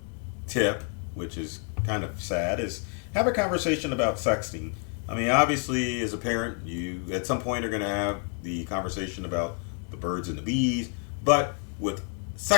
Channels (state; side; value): quieter; right; 36.4 dB